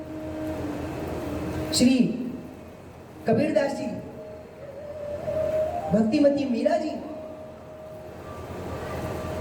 श्री कबीरदास जी, भक्तिमती मीरा जी,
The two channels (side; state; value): both; identical; correlation 1.00